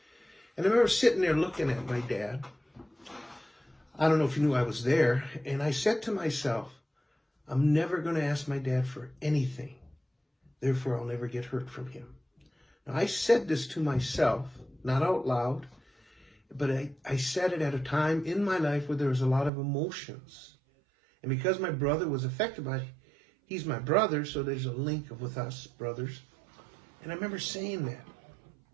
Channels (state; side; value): drops out; left; at 19.5 s